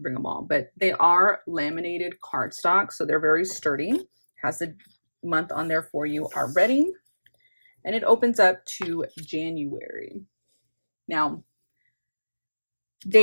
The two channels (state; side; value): inverted; both; correlation -1.00